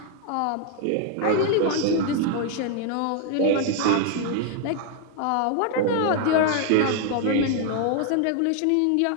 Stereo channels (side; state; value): both; different; correlation 0.00